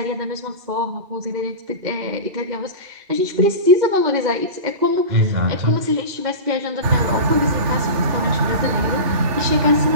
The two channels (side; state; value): left; late; 2.7 ms